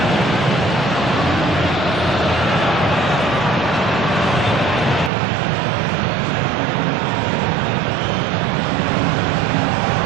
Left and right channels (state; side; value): drops out; left; at 5.1 s